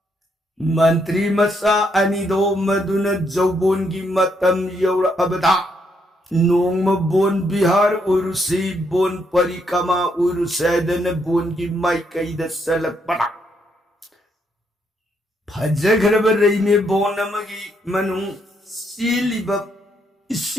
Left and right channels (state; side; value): normal; both; correlation 0.75